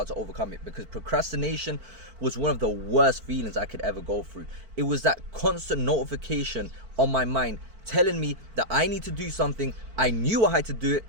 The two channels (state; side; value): late; left; 4.5 ms